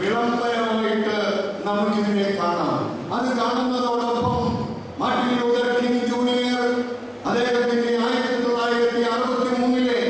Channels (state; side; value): identical; both; correlation 1.00